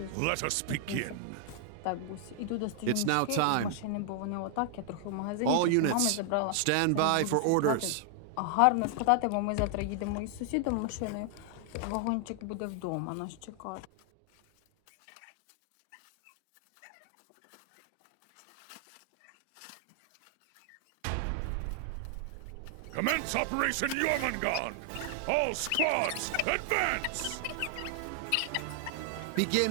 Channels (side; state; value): both; different; correlation 0.00